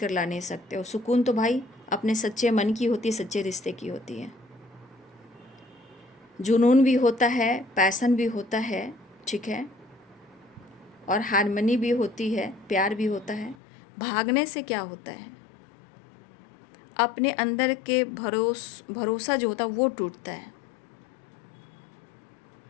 ला नहीं सकते हो। सुकून तो भाई अपने सच्चे मन की होती है, सच्चे रिश्ते की होती है। जुनून भी होता है, पैसन भी होता है, ठीक है, और हारमनी भी होती है, प्यार भी होता है। भागने से क्या होता है, अपने अंदर के भरोसा जो होता है वो टूटता है।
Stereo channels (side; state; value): right; drops out; at 13.6 s